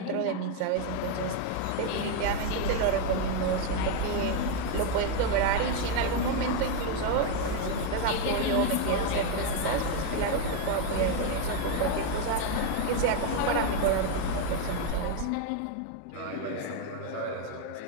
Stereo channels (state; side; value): different; both; correlation 0.01